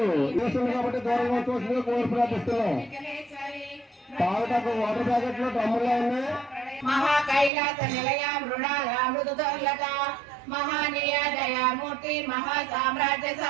చేస్తుంది కాబట్టి దూరంగా చూస్తుంది కోరి ప్రార్థిస్తున్నాం. తాగటకు వాటర్ ప్యాకెట్లు డ్రమ్ముల్లో ఉన్నాయి. మహాకైలాస నిలయ మృణామృత మహానీయ దయామూర్తి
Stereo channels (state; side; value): drops out; left; at 7.5 s